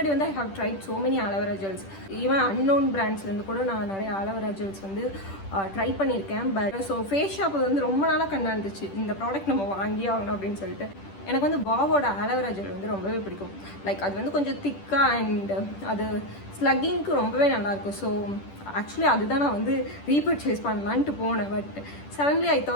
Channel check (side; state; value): right; late; 10 ms